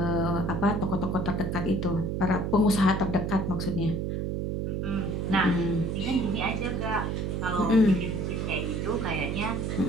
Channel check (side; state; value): right; noise; hum, 1 dB below the sound